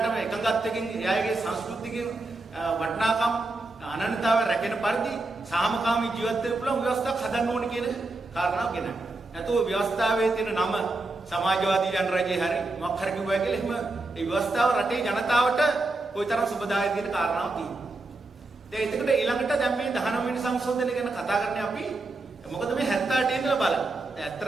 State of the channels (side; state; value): left; quieter; 3.1 dB